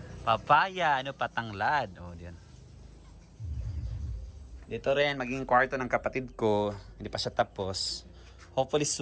Papaya. Patanglad. O diyan. Dito rin maging kwarto ng kapatid ko. Hindi pa siya tapos. Hopefully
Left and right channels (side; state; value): both; identical; correlation 1.00